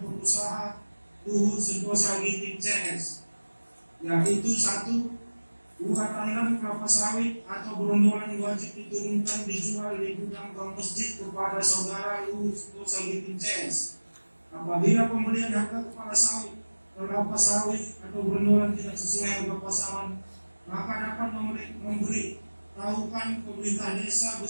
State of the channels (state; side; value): inverted; both; correlation -1.00